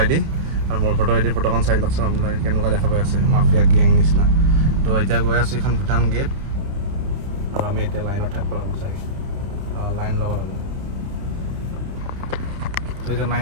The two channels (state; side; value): late; left; 30 ms